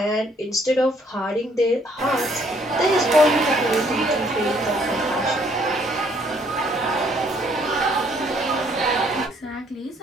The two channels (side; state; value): both; normal; correlation 0.65